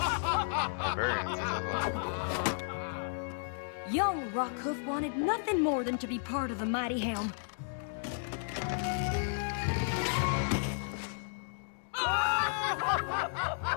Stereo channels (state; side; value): silent; right; digital silence